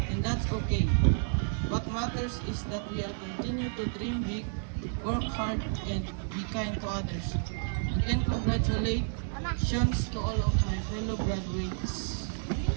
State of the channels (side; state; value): left; silent; digital silence